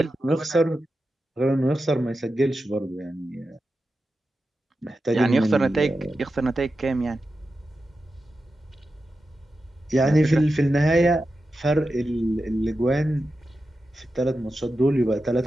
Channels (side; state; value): both; normal; correlation 0.91